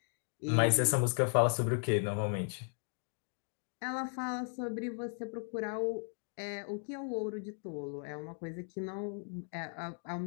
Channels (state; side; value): silent; right; 54 dB below the other